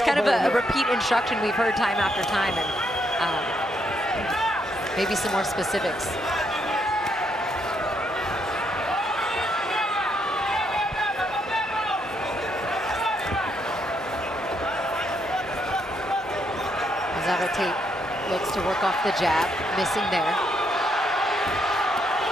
kind of a repeat instruction we've heard time after time, and maybe some more specifics. Navarrete looks to work off the jab, missing there.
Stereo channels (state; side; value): normal; both; correlation 0.75